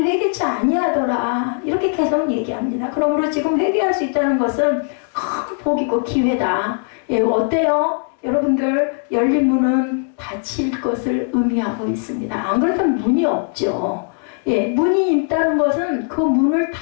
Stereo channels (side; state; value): right; silent; 56 dB below the other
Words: 회개치 아니하더라, 이렇게 계속 얘기합니다. 그러므로 지금 회개할 수 있다는 것은 큰 복이고 기회다. 예, 어때요? 여러분들, 열린 문은 닫힐 것을 의미하고 있습니다. 안 그렇다면 문이 없죠. 예, 문이 있다는 것은 그 문을